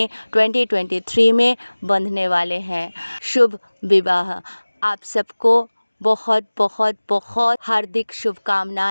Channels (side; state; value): both; inverted; correlation -1.00